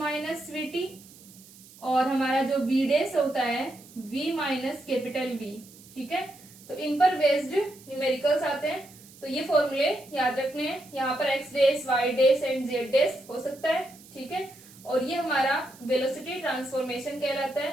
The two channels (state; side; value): noise; right; hiss, 22 dB below the sound